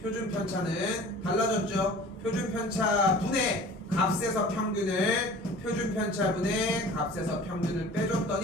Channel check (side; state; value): both; normal; correlation 0.43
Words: 표준 편차는 달라졌죠? 표준 편차 분의 값에서 평균을 표준 편차분의 값에서 평균을